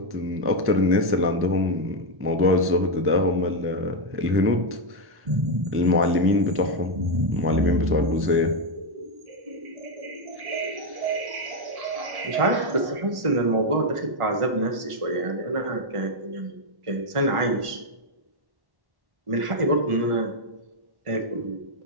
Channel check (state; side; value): late; left; 1.1 ms